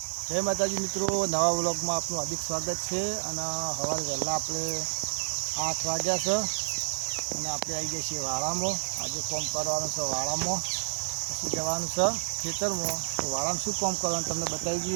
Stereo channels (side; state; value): left; silent; digital silence